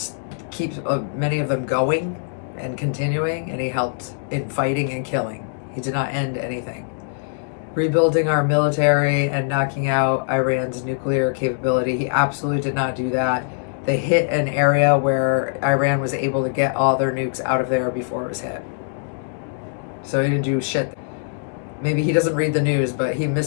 keep many of them going and continuing, and he helped in fighting and killing. He did not end anything. Rebuilding our military and knocking out Iran's nuclear capability, he absolutely did not do that. They hit an area where Iran was able to get all their nukes out of there before it was hit. So he didn't do shit. Maybe he doesn't read the news, but he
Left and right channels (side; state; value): right; silent; digital silence